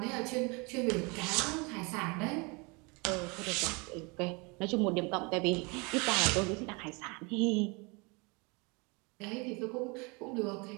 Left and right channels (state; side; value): quieter; left; 29.3 dB